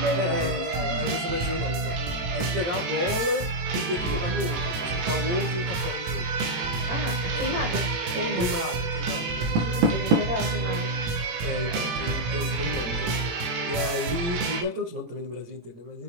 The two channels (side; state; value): left; late; 18 ms